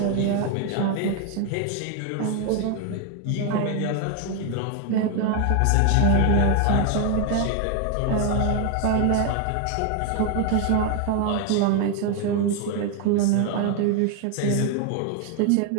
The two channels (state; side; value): different; both; correlation 0.01